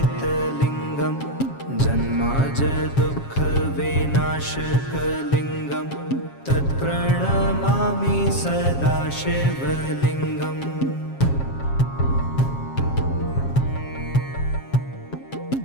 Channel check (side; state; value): right; late; 7.4 ms